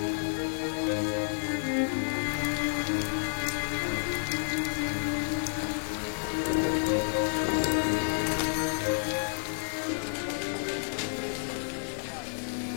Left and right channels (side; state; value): right; silent; 58 dB below the other